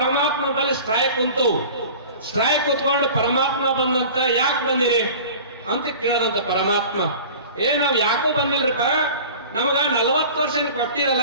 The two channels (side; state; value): both; inverted; correlation -0.41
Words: ಬಳಿ ಸ್ಟ್ರೈಕ್ ಕುಂತು, ಸ್ಟ್ರೈಕ್ ಕುತ್ಕೊಂಡು ಪರಮಾತ್ಮ ಬಂದಂತ ಯಾಕೆ ಬಂದಿರಿ ಅಂತ ಕೇಳದಂತ ಪರಮಾತ್ಮ. ನಾವ್ ಯಾಕೋ ಬಂದಿಲ್ರಿಪ್ಪ, ನಮಗ 40 ವರ್ಷ ಕೊಟ್ಟಿರಲ್ಲ,